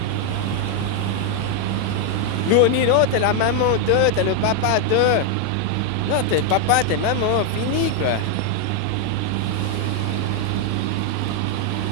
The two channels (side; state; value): both; different; correlation 0.00